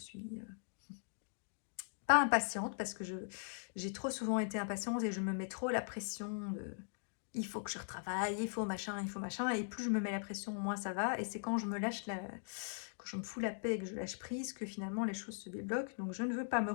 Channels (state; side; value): silent; right; digital silence